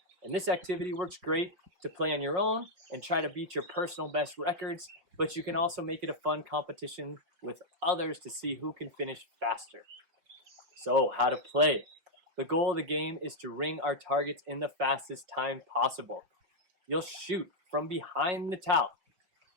And this activity works great to play on your own and try to beat your personal best records, but you can also make it a fun competition with others to see who can finish faster. So, how to play. The goal of the game is to ring our targets in the fastest time possible. You'll shoot from behind the towel,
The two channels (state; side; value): late; left; 5.7 ms